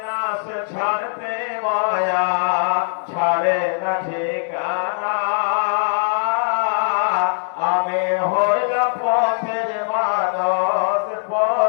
না সে ছাড়তে মায়া, ছাড়ে না ঠিকানা, আমি হইলাম পথের মানুষ,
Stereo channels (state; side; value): silent; right; digital silence